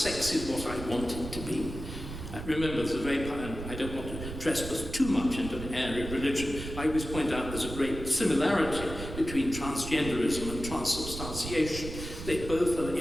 is what I want it to be. Remember, there's a very, I don't want to trespass too much into an area of religion. I always point out there's a great similarity between transgenderism and transubstantiation. They both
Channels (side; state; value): right; noise; rumble, 9 dB below the sound